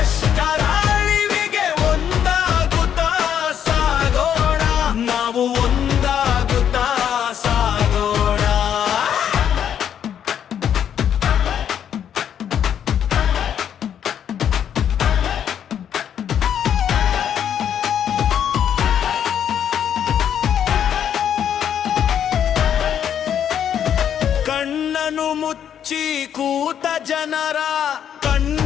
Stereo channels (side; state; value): right; quieter; 9.1 dB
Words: ಅಳಿವಿಗೆ ಒಂದಾಗುತ್ತಾ ಸಾಗೋಣ. ನಾವು ಒಂದಾಗುತ್ತಾ ಸಾಗೋಣ. ಕಣ್ಣನು ಮುಚ್ಚಿ ಕೂತ ಜನರ